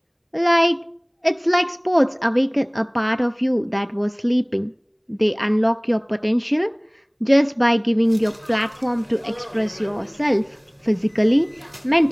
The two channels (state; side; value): identical; both; correlation 1.00